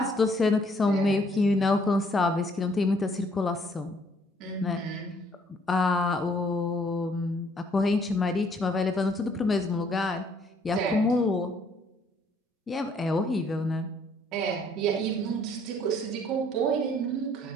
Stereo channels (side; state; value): both; normal; correlation 0.63